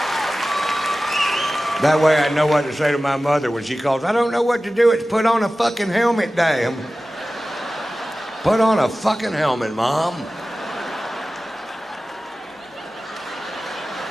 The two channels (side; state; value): both; normal; correlation 0.96